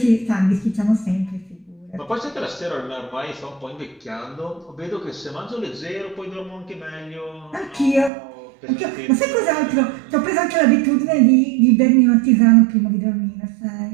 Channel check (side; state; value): left; drops out; at 8.1 s